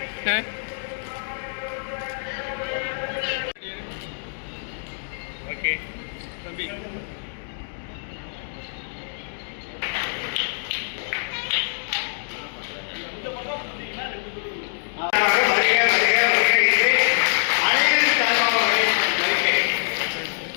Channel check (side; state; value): right; silent; digital silence